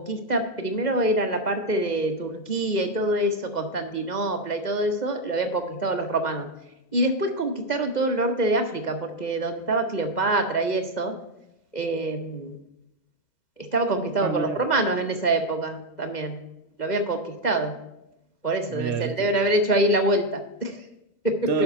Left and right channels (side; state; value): right; late; 2.0 ms